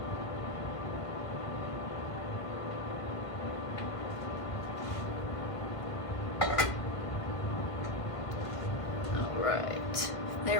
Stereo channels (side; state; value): right; late; 1.5 ms